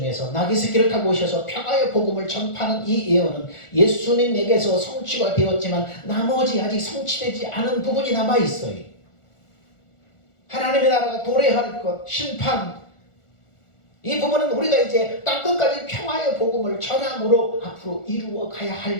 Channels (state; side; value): late; right; 1.4 ms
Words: 나귀 새끼를 타고 오셔서 평화의 복음을 전파하는 이 예언은 예수님에게서 성취가 되었지만 나머지 아직 성취되지 않은 부분이 남아 있어요. 하나님의 나라가 도래할 것, 심판, 이 부분은 우리가 이제 땅끝까지 평화의 복음을 전함으로 앞으로 이루어 가야